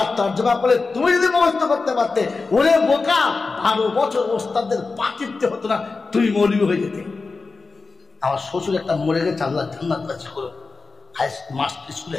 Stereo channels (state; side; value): quieter; right; 4.1 dB